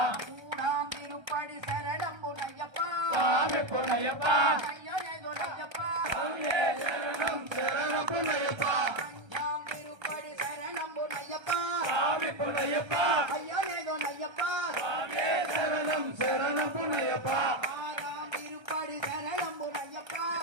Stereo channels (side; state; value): left; late; 1.3 ms